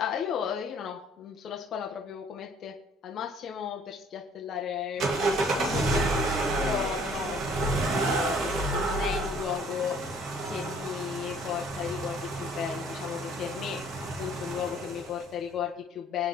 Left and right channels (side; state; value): both; normal; correlation 0.56